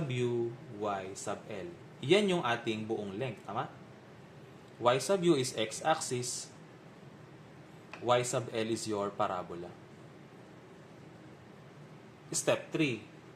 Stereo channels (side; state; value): both; identical; correlation 1.00